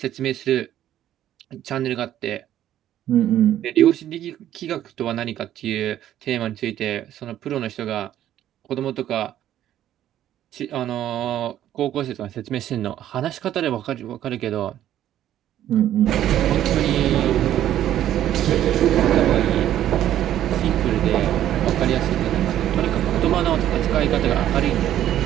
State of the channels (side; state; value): left; quieter; 11.9 dB